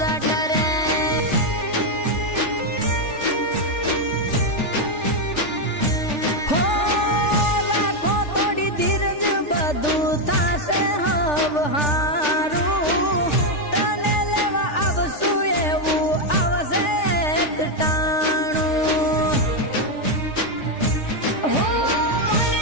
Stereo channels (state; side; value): late; right; 3.4 ms